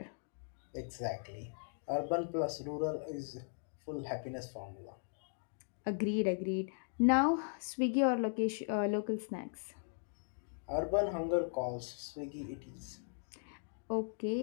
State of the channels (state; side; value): silent; right; digital silence